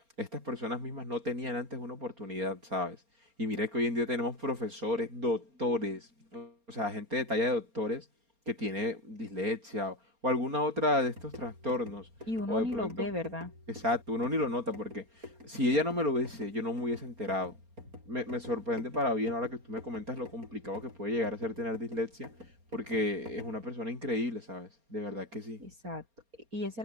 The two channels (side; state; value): left; late; 4.3 ms